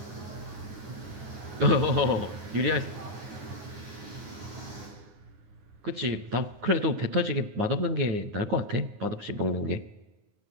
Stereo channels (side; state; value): left; late; 9.6 ms